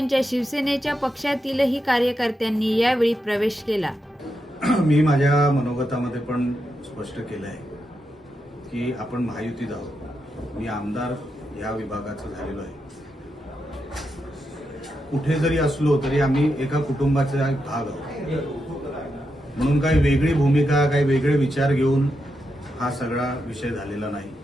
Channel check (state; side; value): normal; both; correlation 0.85